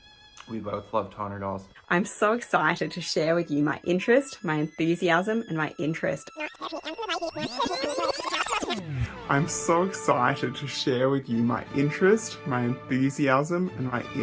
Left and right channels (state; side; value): identical; both; correlation 1.00